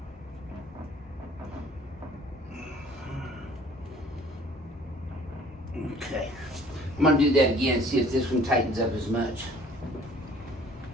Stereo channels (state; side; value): normal; both; correlation 0.53